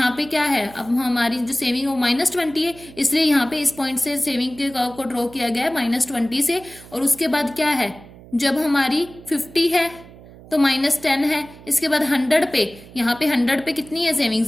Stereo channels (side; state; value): right; noise; hum, 20 dB below the sound